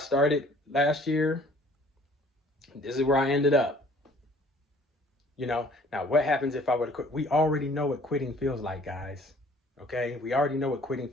last year. This is where I ended up. You know, now what happens if I were to quit? We already know what quitting feels like, guys. Okay, we already know what quitting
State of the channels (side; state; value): both; normal; correlation 0.55